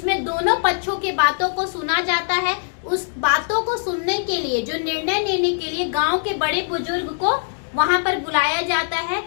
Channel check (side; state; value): right; silent; digital silence